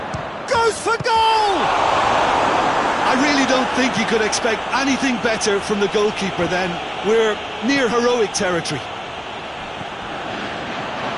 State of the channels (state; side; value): identical; both; correlation 1.00